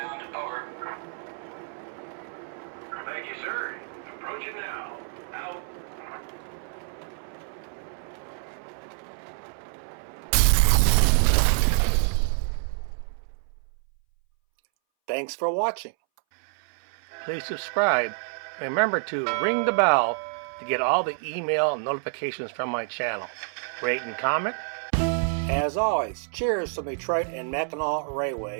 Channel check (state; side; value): silent; left; 60 dB below the other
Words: Over. Thank you, sir. Approaching now. Out. Thanks for watching. Please subscribe and remember to ring the bell to get all the email notifications from my channel. Rate and comment. As always, cheers from Detroit and Mackinac